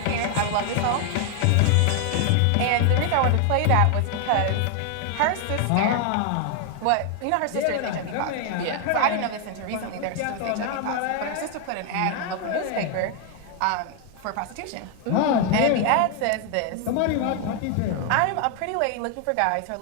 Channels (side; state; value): both; different; correlation 0.00